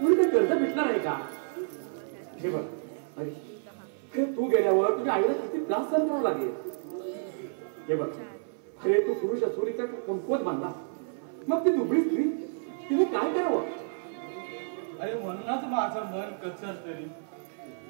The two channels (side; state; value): left; silent; 55 dB below the other